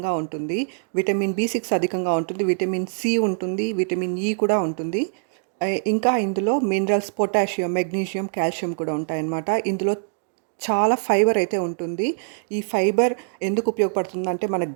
ఉంటుంది, విటమిన్ B6 అధికంగా ఉంటుంది, విటమిన్ సి ఉంటుంది, విటమిన్ ఈ కూడా ఉంటుంది. ఇంకా ఇందులో మినరల్స్, పొటాషియం, మెగ్నీషియం, కాల్షియం కూడా ఉంటాయన్నమాట. ఇందులో చాలా ఫైబర్ అయితే ఉంటుంది. ఈ ఫైబర్ ఎందుకు ఉపయోగపడుతుందంటే మన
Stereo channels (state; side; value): silent; left; digital silence